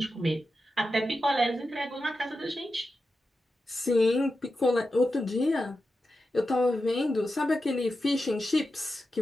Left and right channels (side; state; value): both; normal; correlation 0.90